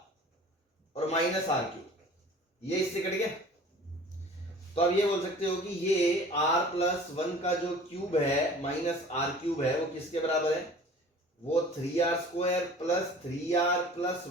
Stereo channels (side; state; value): both; normal; correlation 0.45